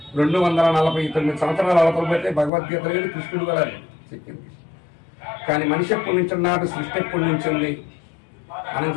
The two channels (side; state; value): right; drops out; at 2.5 s